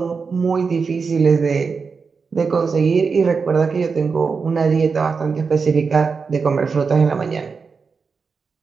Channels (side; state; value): left; quieter; 5.1 dB